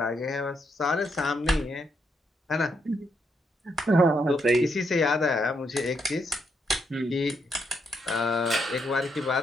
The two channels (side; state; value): both; normal; correlation 0.78